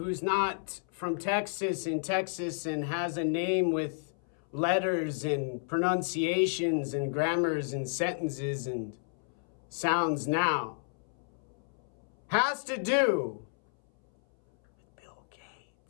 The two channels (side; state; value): right; silent; 57 dB below the other